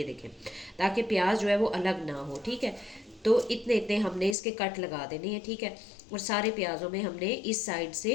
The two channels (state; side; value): drops out; right; at 4.4 s